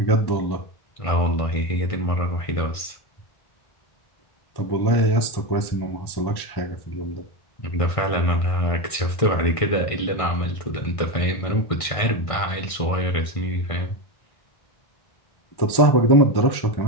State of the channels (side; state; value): right; late; 1.6 ms